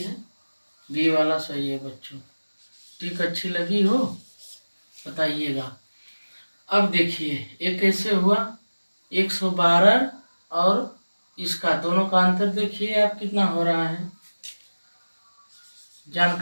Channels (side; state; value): both; inverted; correlation -1.00